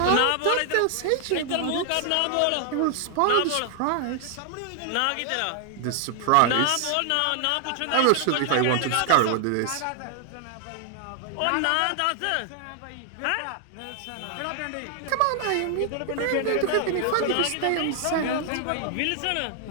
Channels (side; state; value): both; different; correlation 0.00